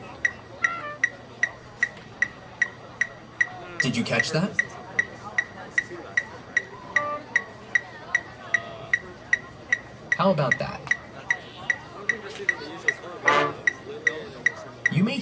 Did you catch that? How about that? You may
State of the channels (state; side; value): identical; both; correlation 1.00